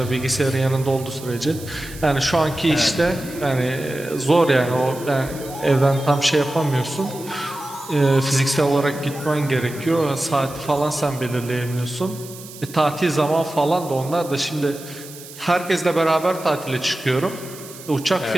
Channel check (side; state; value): right; noise; hiss, 16 dB below the sound